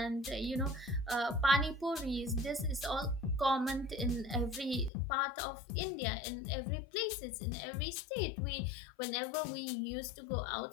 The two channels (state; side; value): drops out; right; at 4.9 s